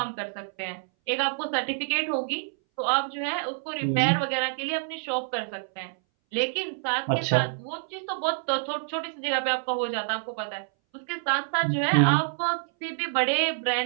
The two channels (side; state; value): left; silent; 60 dB below the other